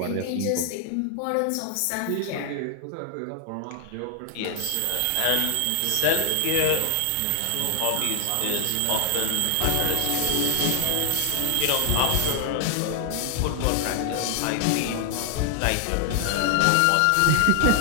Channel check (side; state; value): both; different; correlation 0.00